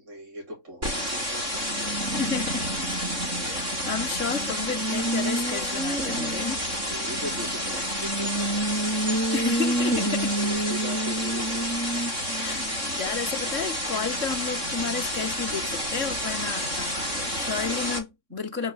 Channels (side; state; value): left; late; 3.6 ms